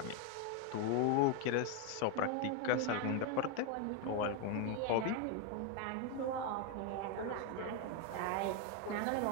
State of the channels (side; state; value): both; different; correlation 0.01